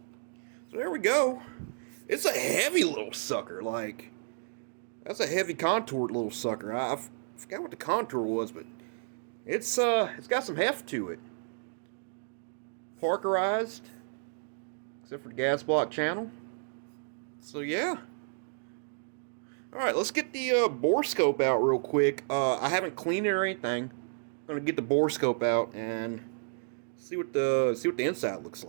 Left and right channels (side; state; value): left; silent; digital silence